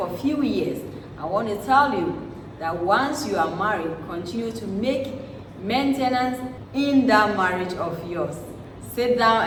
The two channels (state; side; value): identical; both; correlation 1.00